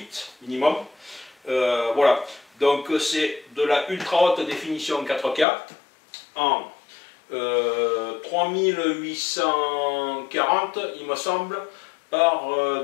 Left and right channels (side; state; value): right; drops out; at 5.5 s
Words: minimum. Voilà, donc c'est de la ultra haute définition 4K en 3840 il me semble par